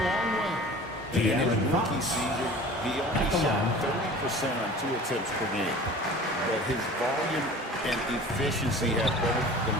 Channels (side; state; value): both; normal; correlation 0.42